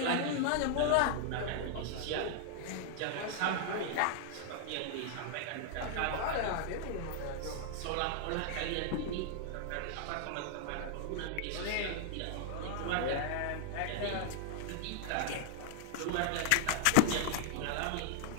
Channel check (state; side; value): different; both; correlation -0.01